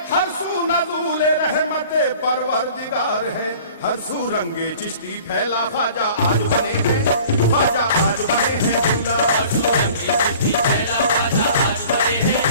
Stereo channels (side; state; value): both; inverted; correlation -0.48